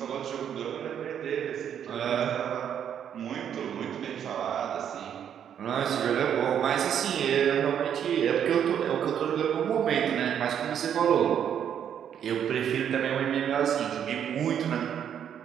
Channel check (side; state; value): left; quieter; 9.0 dB